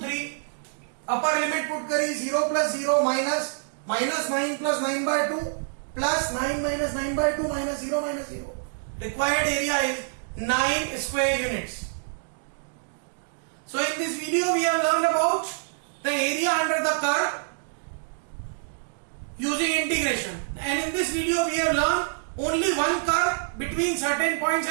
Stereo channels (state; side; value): silent; left; digital silence